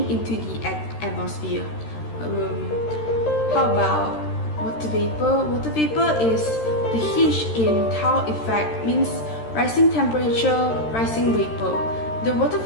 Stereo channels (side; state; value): right; late; 13 ms